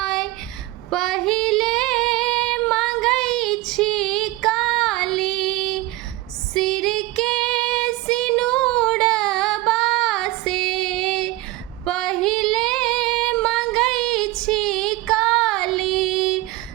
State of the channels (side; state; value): left; quieter; 18.5 dB